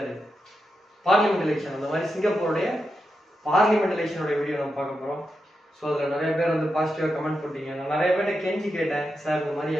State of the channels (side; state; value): both; normal; correlation 0.87